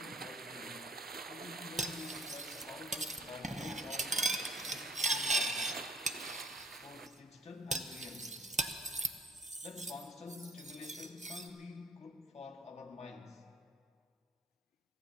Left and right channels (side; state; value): both; normal; correlation 0.55